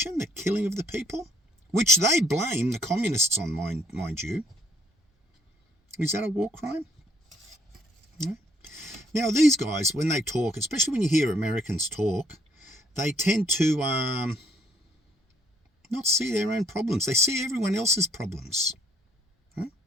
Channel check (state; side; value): normal; both; correlation 0.65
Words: the killing of the people, which they blame the communists on, mind you. Is that a war crime? No. Now, these guys, when they talk, especially when you hear Americans talk, they tend to not see their own problems. They see everyone else's problems. Right?